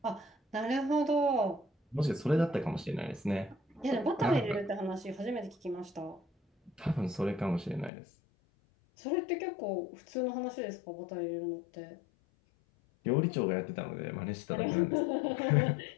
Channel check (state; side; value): drops out; right; at 7.9 s